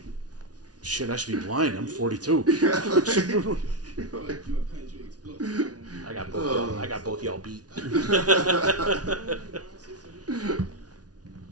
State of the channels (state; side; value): late; left; 0.69 ms